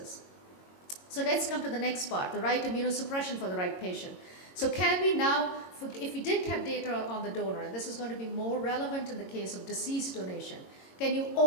So let's come to the next part, the right immunosuppression for the right patient. So can we now, if we did have data on the donor, and this is going to be more relevant in the case of deceased donation, can you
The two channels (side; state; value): right; late; 22 ms